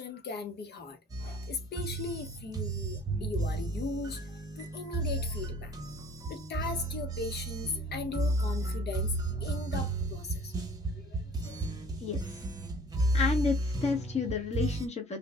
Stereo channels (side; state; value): both; normal; correlation 0.51